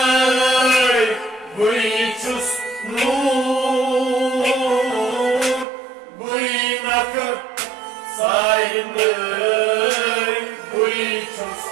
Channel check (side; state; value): left; drops out; at 5.7 s